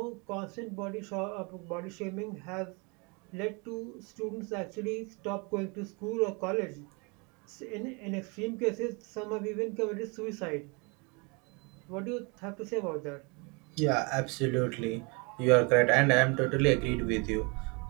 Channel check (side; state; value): left; quieter; 30.7 dB